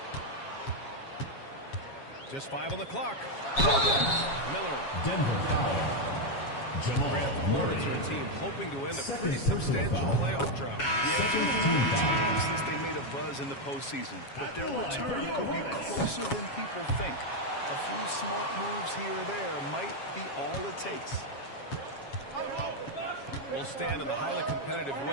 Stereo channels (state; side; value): late; right; 7.3 ms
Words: Just 5 on the clock. Miller. Denver foul. Jamal Grant, the Hornets are a team hoping to end a pretty substantial playoff drought. Yeah, it's been a long time since they made a buzz in the postseason, but their return could be closer than people think. A few smart moves here or there might be all it takes. We'll stand in the highly competitive